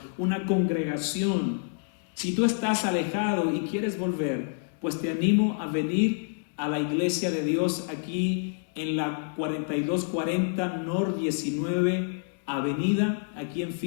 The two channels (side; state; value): right; silent; digital silence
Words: una congregación, si tú estás alejado y quieres volver, pues te animo a venir a la Iglesia de Dios aquí en la 4240 North 19 Avenida, aquí en